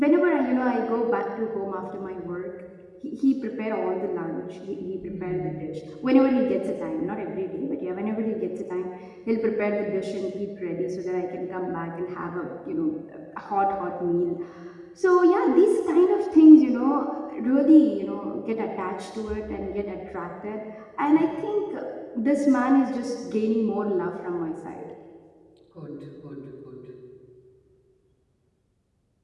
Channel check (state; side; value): identical; both; correlation 1.00